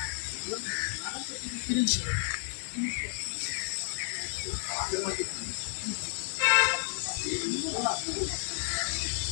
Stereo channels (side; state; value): right; silent; digital silence